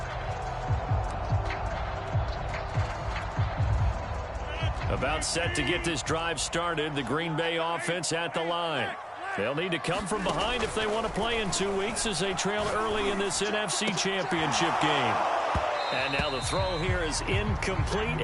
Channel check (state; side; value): identical; both; correlation 1.00